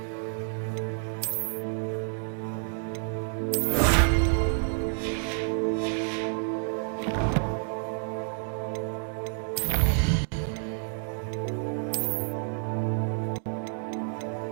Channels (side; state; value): left; silent; 59 dB below the other